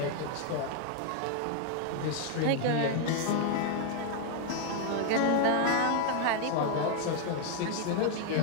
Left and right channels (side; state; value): both; different; correlation 0.00